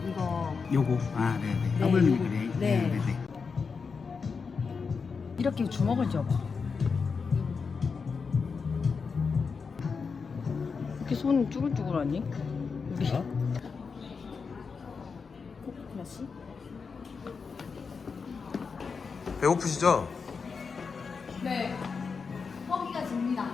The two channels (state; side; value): quieter; right; 5.3 dB